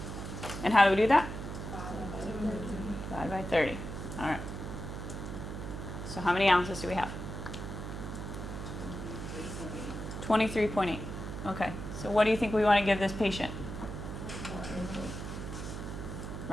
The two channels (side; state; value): right; noise; hum, 7 dB below the sound